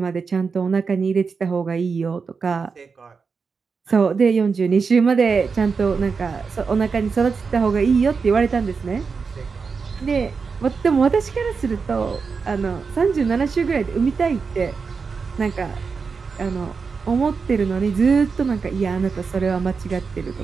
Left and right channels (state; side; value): quieter; left; 5.2 dB